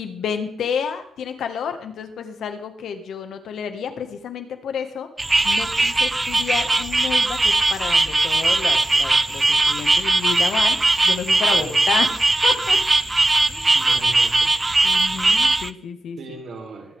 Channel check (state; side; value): normal; both; correlation 0.94